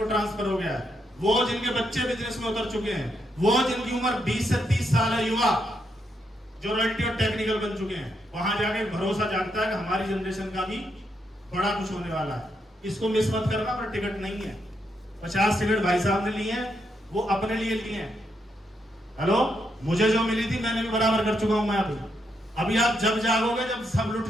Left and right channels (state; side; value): normal; both; correlation 0.79